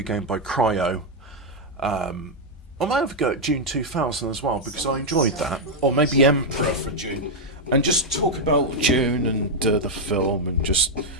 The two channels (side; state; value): both; normal; correlation -0.01